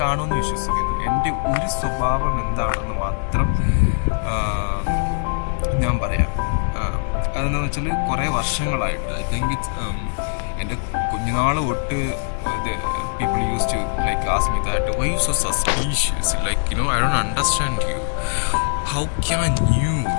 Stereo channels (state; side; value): silent; right; 65 dB below the other